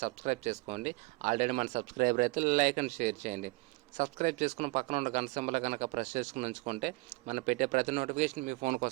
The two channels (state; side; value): quieter; left; 24.7 dB